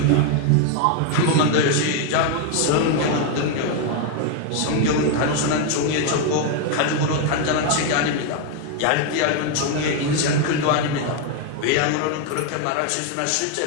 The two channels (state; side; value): different; both; correlation 0.01